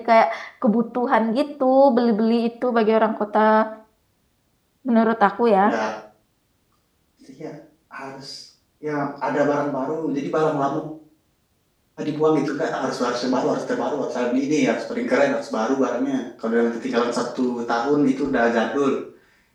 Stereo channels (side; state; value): both; identical; correlation 1.00